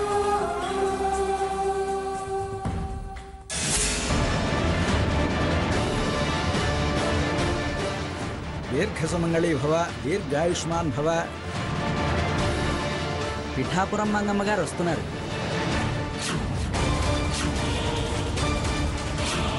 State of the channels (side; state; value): both; identical; correlation 1.00